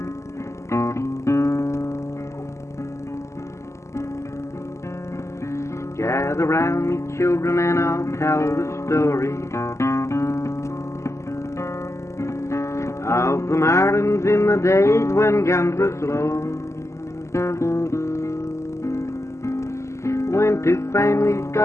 Gather round me, children, and I'll tell the story of the mountains in the days when guns were slow. When two families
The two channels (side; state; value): right; late; 0.13 ms